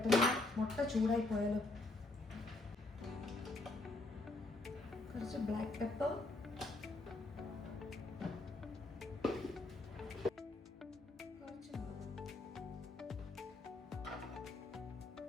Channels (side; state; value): right; quieter; 3.0 dB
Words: മുട്ട ചൂടായി പോയാലോ. കുറച്ച് ബ്ലാക്ക് പെപ്പർ, കുറച്ച്